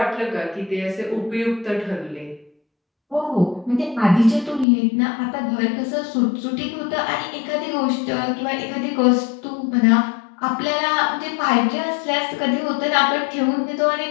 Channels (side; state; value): right; drops out; at 4.7 s